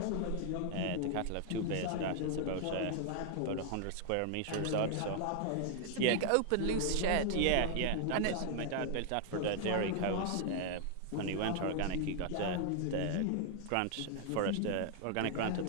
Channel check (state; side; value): different; both; correlation 0.00